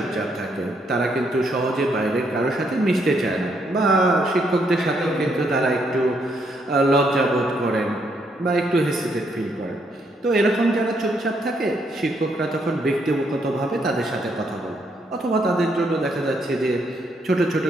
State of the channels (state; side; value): normal; both; correlation 0.74